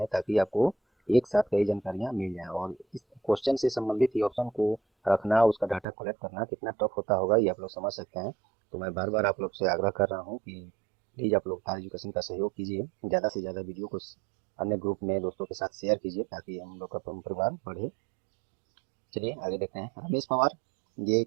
ताकि आपको एक साथ कई जानकारियां मिल जाएं। और इस क्वेश्चन से संबंधित ये ऑप्शन को रखना, उसका डाटा कलेक्ट करना कितना टफ होता होगा, ये आप लोग समझ सकते हैं। तो मैं बार बार आप लोग से आग्रह कर रहा हूँ कि प्लीज़ आप लोग तार एजुकेशन का सहयोग कीजिए, ज़्यादा से ज़्यादा वीडियो को अन्य ग्रुप में दोस्तों के साथ शेयर कीजिए, ताकि हम लोग का परिवार बढ़े। चलिए आगे देखते हैं। रमेश पवार, ये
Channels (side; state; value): left; drops out; at 5.9 s